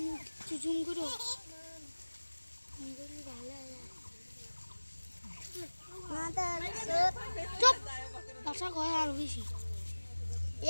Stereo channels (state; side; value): inverted; both; correlation -1.00